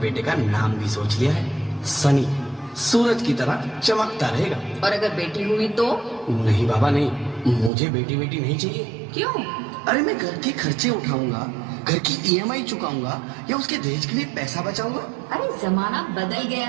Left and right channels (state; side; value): drops out; left; at 7.7 s